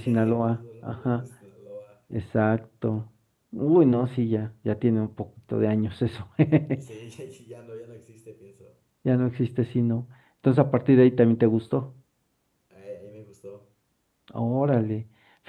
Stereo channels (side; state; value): both; identical; correlation 1.00